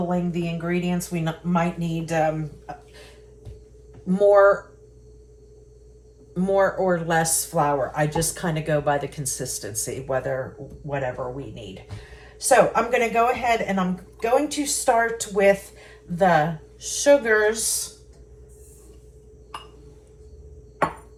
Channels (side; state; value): both; identical; correlation 1.00